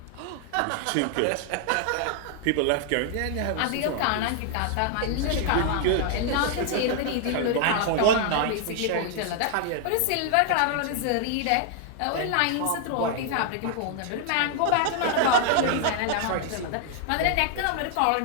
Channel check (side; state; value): both; different; correlation 0.00